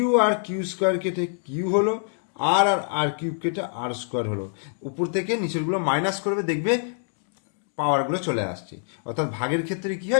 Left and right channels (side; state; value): right; silent; digital silence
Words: আর q² কেটে কিউ হলো, আর³ কেটে r² হলো। উপর থেকে নিচেরগুলো মাইনাস করবে, দেখবে পাওয়ারগুলো চলে আসছে, অর্থাৎ ভাগের ক্ষেত্রে কি